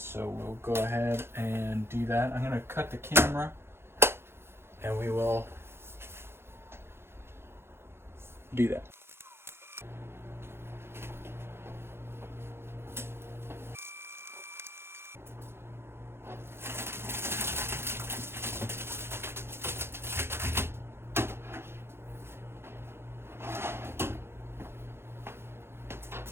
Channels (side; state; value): left; late; 0.12 ms